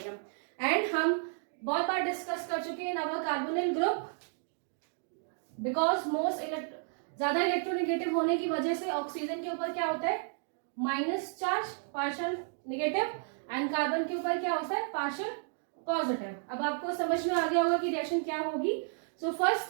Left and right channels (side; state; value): left; silent; 56 dB below the other